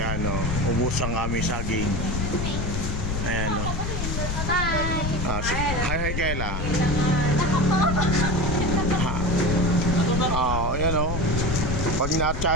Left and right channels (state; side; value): noise; left; rumble, 2 dB below the sound